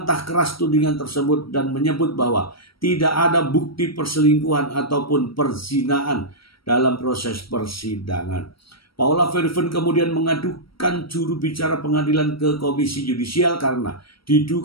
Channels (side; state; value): right; late; 0.75 ms